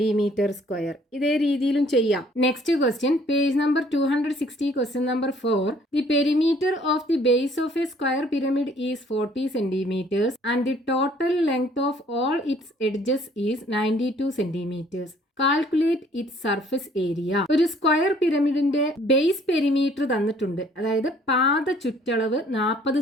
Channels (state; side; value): normal; both; correlation 0.59